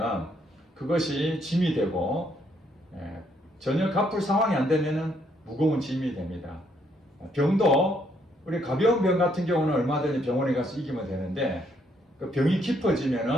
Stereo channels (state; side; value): normal; both; correlation 0.71